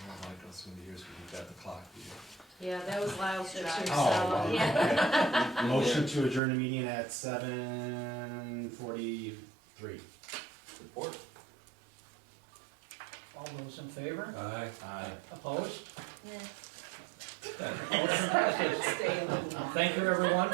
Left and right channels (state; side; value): drops out; left; at 6.4 s